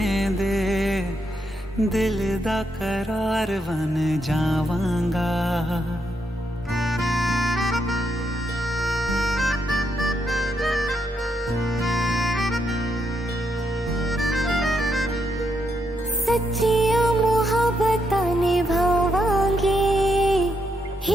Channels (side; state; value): both; normal; correlation 0.79